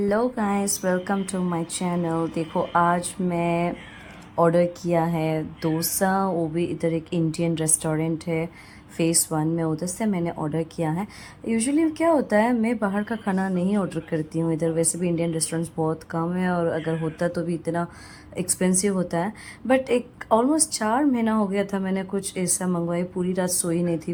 guys, welcome to my channel. देखो, आज मैं ऑर्डर किया है डोसा। वो भी इधर एक इंडियन रेस्टोरेंट है फेस 1 में, उधर से मैंने ऑर्डर किया है। यूजुअली क्या होता है, मैं बाहर का खाना नहीं ऑर्डर करती हूँ इधर। वैसे भी इंडियन रेस्टोरेंट्स बहुत कम है, और अगर होता तो भी इतना एक्सपेंसिव होता है। बट एक ऑलमोस्ट 4 महीना हो गया था मैंने कुछ ऐसा मंगवाई। पूरी रात सोई नहीं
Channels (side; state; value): both; identical; correlation 1.00